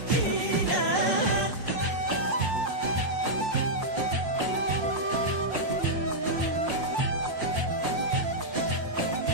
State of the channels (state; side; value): late; left; 5.7 ms